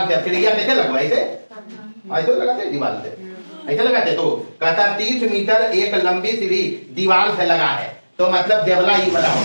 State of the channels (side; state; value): both; inverted; correlation -1.00